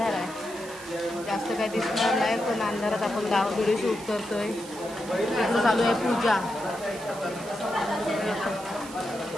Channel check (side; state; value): right; noise; hiss, 15 dB below the sound